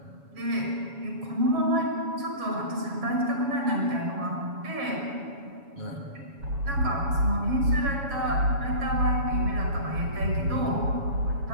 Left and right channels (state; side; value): late; left; 7.2 ms